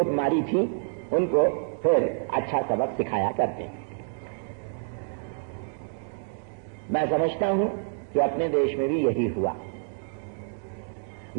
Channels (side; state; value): left; silent; digital silence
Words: मारी थी उनको फिर अच्छा सबक सिखाया करते हैं। मैं समझता हूं कि अपने देश में भी यही हुआ।